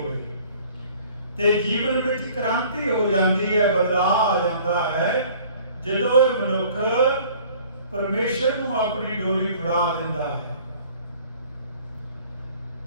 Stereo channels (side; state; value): both; inverted; correlation -0.52